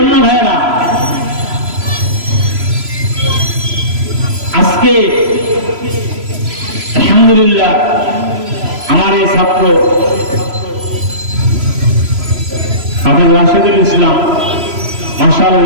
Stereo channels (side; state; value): left; late; 3.0 ms